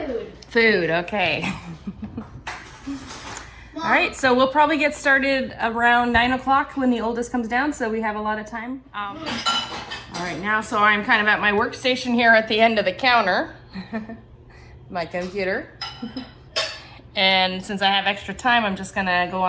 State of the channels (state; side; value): identical; both; correlation 1.00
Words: Food, okay. All right, so we'll probably get started around 9 o'clock when the oldest comes down, so we have a lot of time. All right, now, so I'm kind of at my workstation here at the end of the counter. My computer. And since I have extra time, I'm just gonna go